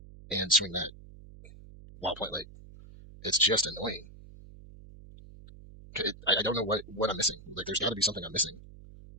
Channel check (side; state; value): right; noise; hum, 18 dB below the sound